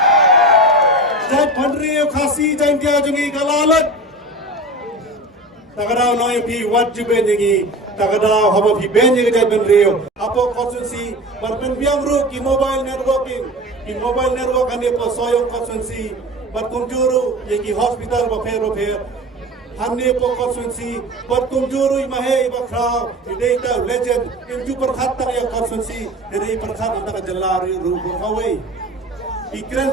Jai Pandriyo Khasi Jai Kya Jungi Kalalat Takadaw no pi wajib bengi takadaw haba pi bengi Jai Pandriyo Apo konsensi berpen biang ru ki mobile networking ki mobile network ane po soyong konsensi berkunjuru ye ki hospital ba Hanne po konsensi berkunjuru imahe bakra data legend inju perkhatan ya konsensi dari perkhatan antara jelari ru kawai ikran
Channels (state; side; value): normal; both; correlation 0.33